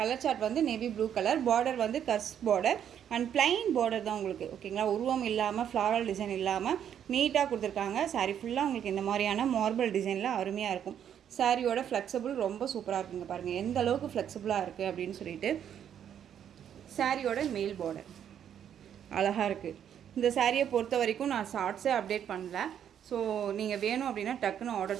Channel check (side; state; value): left; quieter; 9.2 dB